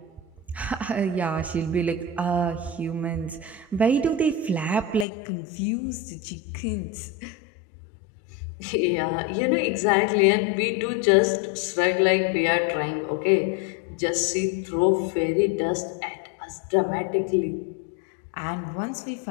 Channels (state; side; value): drops out; right; at 5.1 s